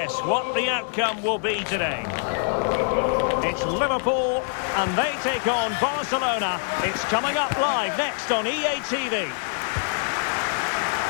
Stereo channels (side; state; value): right; silent; 62 dB below the other